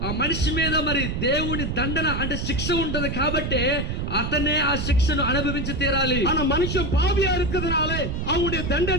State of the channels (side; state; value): right; noise; rumble, 2 dB below the sound